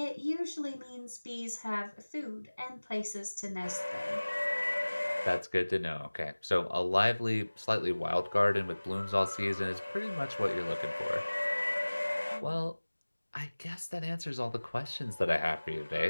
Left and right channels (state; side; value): inverted; both; correlation -1.00